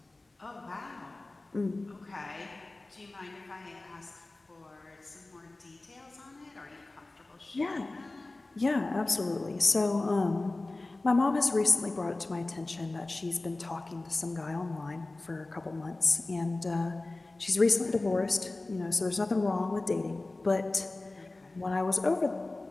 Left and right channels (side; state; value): right; quieter; 3.0 dB